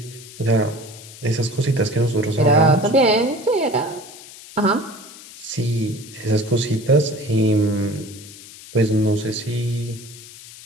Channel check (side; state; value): left; noise; hiss, 17 dB below the sound